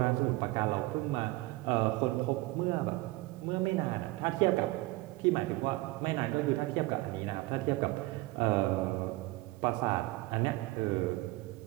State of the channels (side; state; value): left; quieter; 20.6 dB